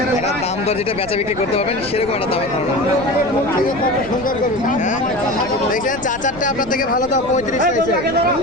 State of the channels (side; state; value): left; noise; rumble, 17 dB below the sound